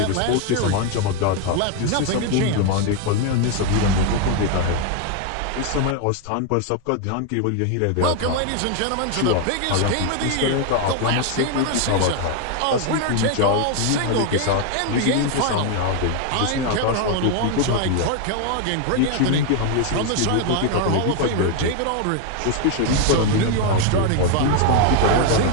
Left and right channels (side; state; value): both; different; correlation 0.01